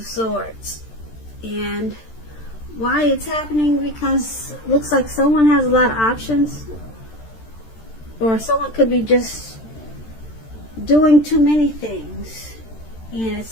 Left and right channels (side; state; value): right; late; 13 ms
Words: Swords. And why it's happening? Because it looks like someone has a lot of options, or someone could be just doing too many things, and